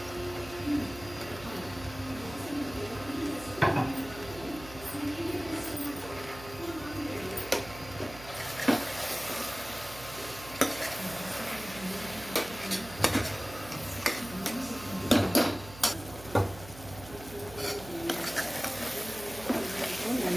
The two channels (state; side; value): noise; right; hum, 15 dB below the sound